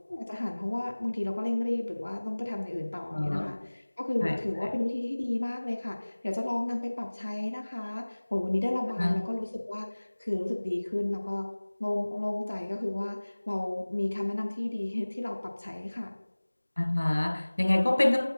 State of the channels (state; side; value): inverted; both; correlation -1.00